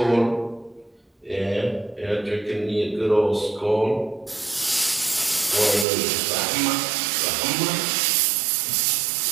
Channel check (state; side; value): drops out; left; at 5.9 s